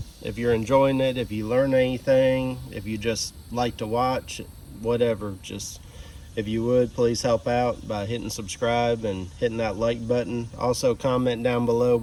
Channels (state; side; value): identical; both; correlation 1.00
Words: If you're enjoying it, if you learn anything, if you just like to watch, whatever, just if you would, please help out by hitting subscribe and hitting that like button. Also comment down below